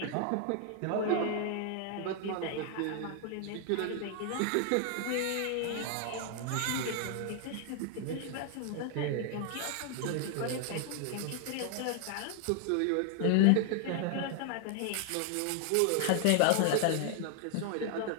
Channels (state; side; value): different; both; correlation 0.00